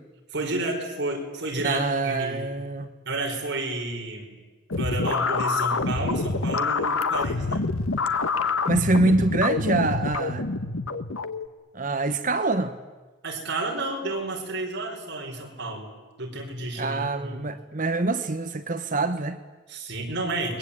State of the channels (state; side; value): normal; both; correlation 0.31